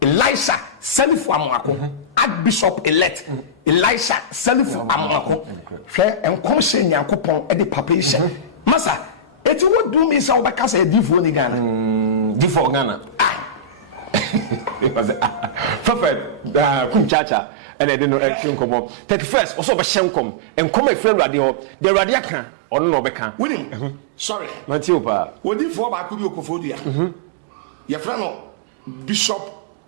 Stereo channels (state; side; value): drops out; left; at 17.1 s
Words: Elisha, Selifu Amako, Archbishop elect, Elisha, Selifu Amako, and Commission Yankopon at the papation. Massa, it would do me so because I divo ni Ghana. Divo Ghana. Prophet, Kumchacha. And I didn't know come on. 31st, also a shenkom, and come a friend radio, the radiacan, or no becan. Winning, sorry, Matiopa. What if for Bakubu Kofodia? your friend Bishop